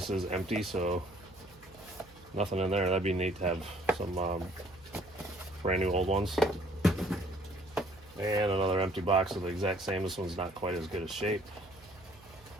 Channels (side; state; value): right; noise; hum, 25 dB below the sound